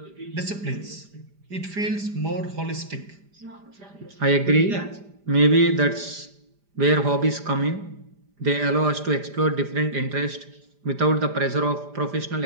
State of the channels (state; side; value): late; left; 5.0 ms